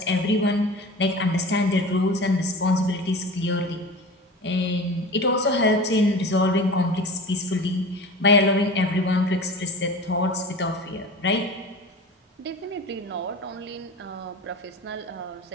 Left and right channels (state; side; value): normal; both; correlation 0.35